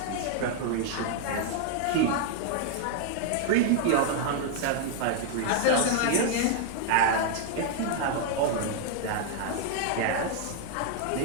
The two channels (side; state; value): both; different; correlation 0.00